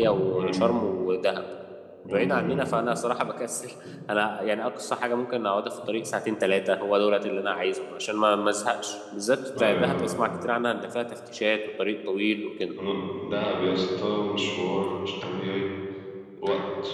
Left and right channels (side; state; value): both; identical; correlation 1.00